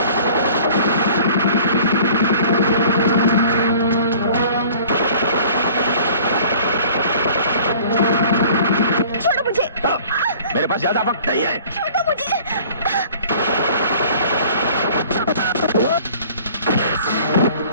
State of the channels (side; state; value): both; inverted; correlation -0.49